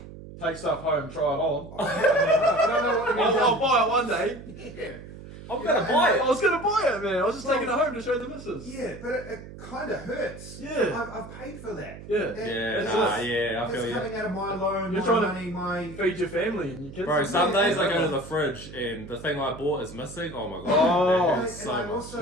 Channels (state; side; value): noise; right; hum, 15 dB below the sound